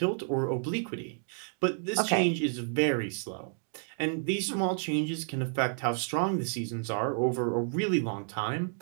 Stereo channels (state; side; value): silent; left; 57 dB below the other